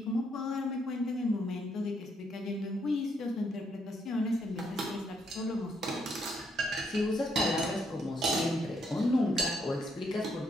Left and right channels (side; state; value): both; normal; correlation 0.74